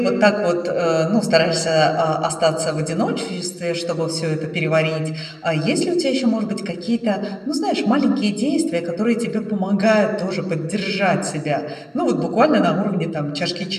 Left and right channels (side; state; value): both; identical; correlation 1.00